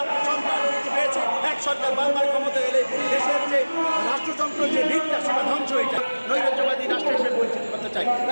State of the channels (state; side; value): inverted; both; correlation -1.00